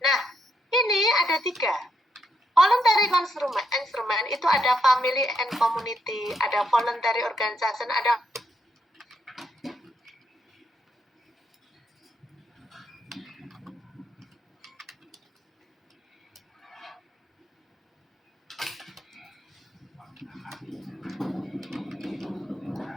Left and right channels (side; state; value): both; normal; correlation 0.77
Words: Nah, ini ada tiga. Voluntary instrument itu ada family and community, ada voluntary organization, ada